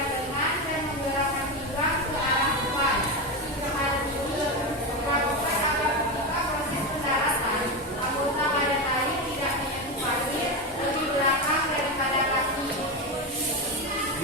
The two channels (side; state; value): both; normal; correlation 0.15